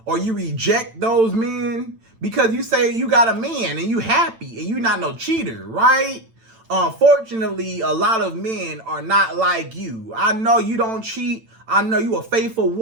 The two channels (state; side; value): late; left; 8.9 ms